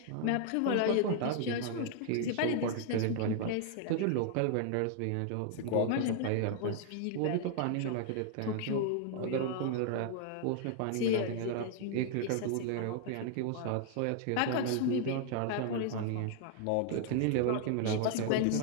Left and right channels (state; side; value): different; both; correlation 0.00